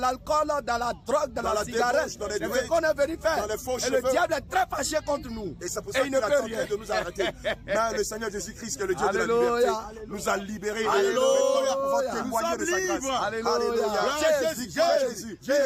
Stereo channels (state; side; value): identical; both; correlation 1.00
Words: dans la drogue, dans la cigarette. C'est ce qu'on est venu faire. Et le diable est très fâché contre nous. Et c'est pour ça qu'il a tenté de nous arrêter. Mais le Seigneur Jésus-Christ, qui est le Dieu de la liberté, nous a libérés. Alléluia. Nous pouvons témoigner de sa grâce. Alléluia.